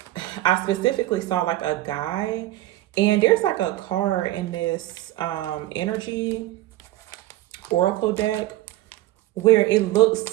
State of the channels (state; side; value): quieter; left; 16.1 dB